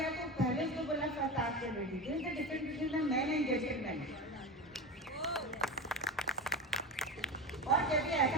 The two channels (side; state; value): both; normal; correlation 0.25